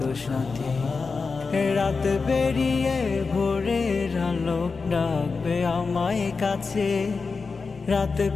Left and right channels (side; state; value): right; quieter; 4.5 dB